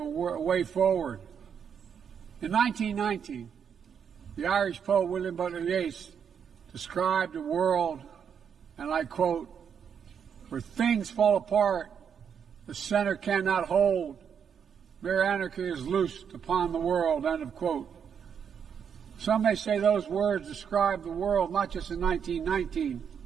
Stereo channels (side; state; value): left; quieter; 7.5 dB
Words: way forward. In 1919, the Irish poet William Butler Yeats described a world, and I quote, "where things fall apart, the center cannot hold, mere anarchy is loosed upon the world," end of quote. Some may say those words describe the world not just in 1919,